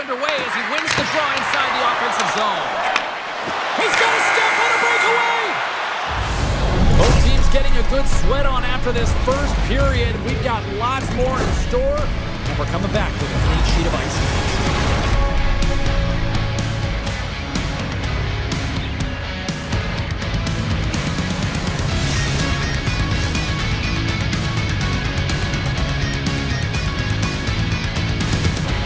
as he wins the draw inside the offensive zone. He's got a step on a breakaway! Both teams getting a good sweat on after this first period. We've got lots more in store, and we're coming back with a clean sheet of ice.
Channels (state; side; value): identical; both; correlation 1.00